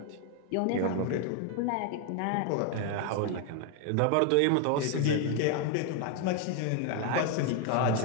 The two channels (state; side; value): different; both; correlation 0.01